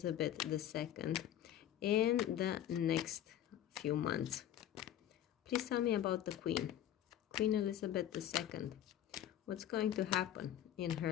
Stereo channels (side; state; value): right; quieter; 11.3 dB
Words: II in the next few months? Please tell me about the Queen Elizabeth II. What's going to happen in